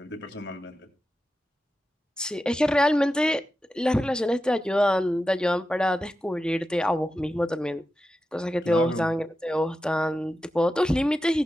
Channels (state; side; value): normal; both; correlation 0.91